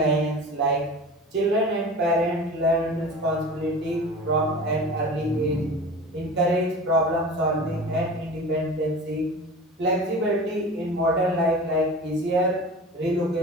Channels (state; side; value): normal; both; correlation 0.36